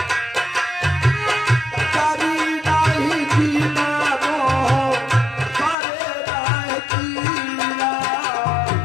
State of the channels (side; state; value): right; drops out; at 5.8 s